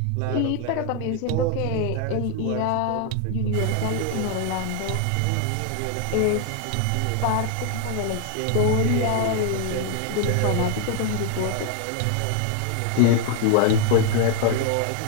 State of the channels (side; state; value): both; different; correlation 0.00